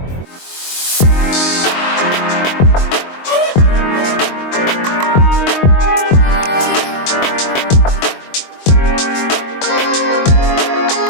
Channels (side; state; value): right; late; 22 ms